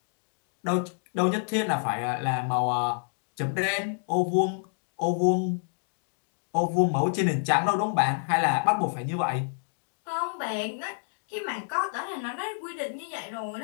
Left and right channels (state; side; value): silent; right; digital silence